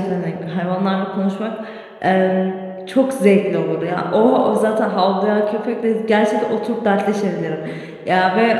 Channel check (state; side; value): identical; both; correlation 1.00